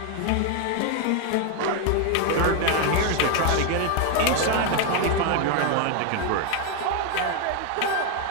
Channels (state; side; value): different; both; correlation 0.01